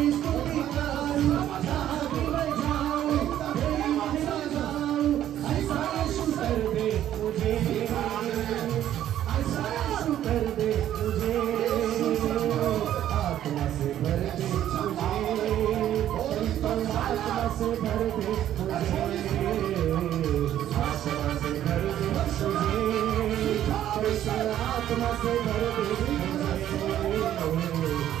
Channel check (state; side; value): quieter; left; 11.6 dB